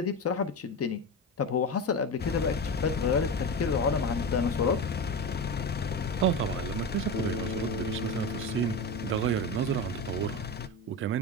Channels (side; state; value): both; normal; correlation 0.21